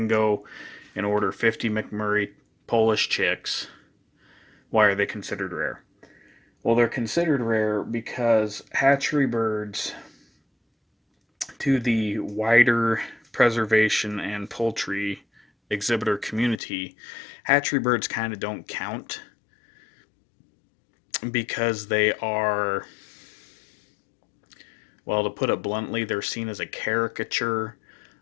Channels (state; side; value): drops out; right; at 16.6 s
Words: go and order 50 McMurray Polish chicks. Why are they considered rare? Well, they're considered rare because hatchery birds, to the wider preservation and poultry exhibitor community, hatchery birds kind of don't count because they are, well, to put it bluntly, they're seen as a caricature